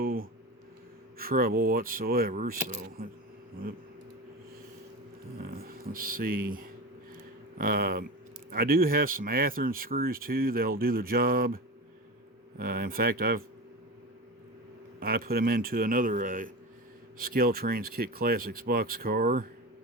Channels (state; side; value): normal; both; correlation 0.26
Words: trouble whatsoever. So let's see. I do have some Athearn screws too. They'll do the job. In fact, I put them into another Scaletrains Kit Classics box car,